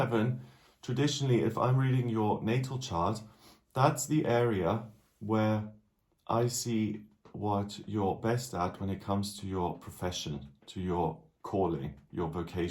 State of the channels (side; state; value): both; identical; correlation 1.00